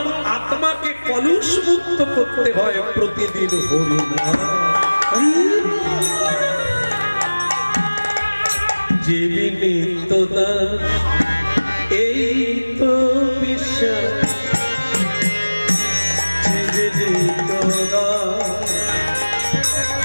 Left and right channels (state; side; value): inverted; both; correlation -1.00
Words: আত্মাকে কলুষ মুক্ত করতে হয় প্রতিদিন হরি নাম। যে নিত্য দাস এই তো বিশ্বাস, যে নিত্য দাস